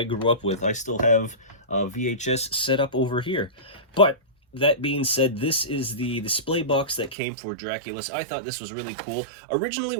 grew up with. I still have VHS set up over here. But that being said, this is the display box that came for Draculus. I thought this was really cool. Originally,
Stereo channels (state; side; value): drops out; left; at 7.2 s